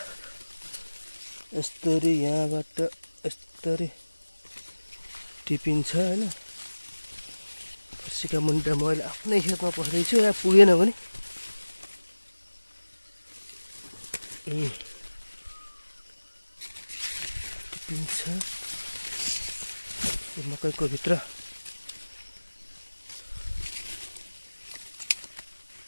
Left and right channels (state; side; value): inverted; both; correlation -1.00